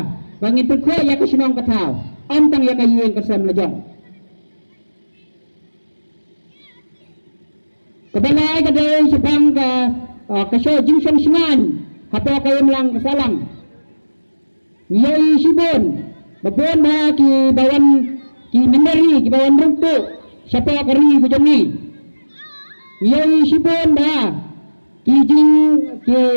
bangin perkut ya ke sinong ke tau antang ya ke yueng ke sam lejong. Kebalai kadai sepang ke show jingsong singan. Hapo kayo lang kasalang. Ngiyay sibon. Babon na ki bawan ki mendari ki bawan runtuk siapa kari kujongi yoi sipon ba ki jing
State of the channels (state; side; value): inverted; both; correlation -1.00